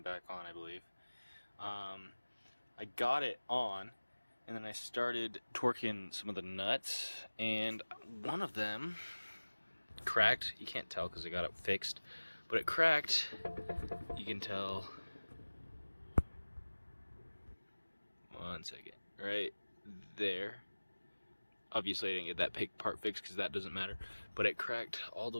on, I believe. I got it on, and then I started torquing some of the nuts, and one of them cracked. You can't tell because I got it fixed, but it cracked. You can tell. One second, right there. Obviously, I didn't get that part fixed because that doesn't matter, but it cracked all the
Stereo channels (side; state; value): both; inverted; correlation -1.00